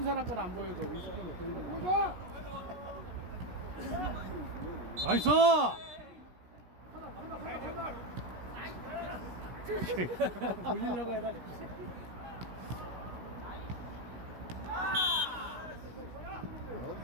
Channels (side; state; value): left; late; 17 ms